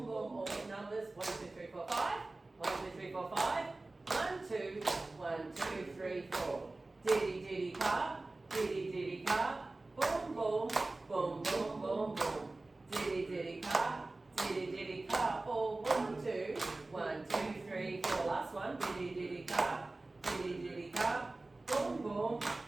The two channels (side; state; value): left; quieter; 3.0 dB